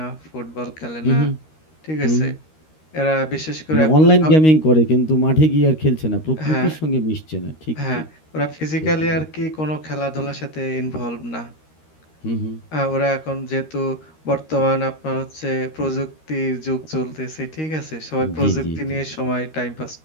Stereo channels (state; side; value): late; right; 13 ms